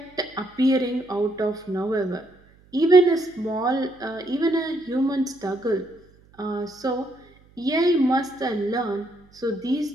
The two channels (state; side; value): noise; right; hum, 29 dB below the sound